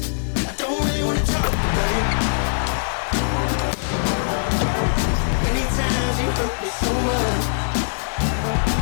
I don't really wanna talk about it. Many times you hurt me so much.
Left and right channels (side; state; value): right; silent; 64 dB below the other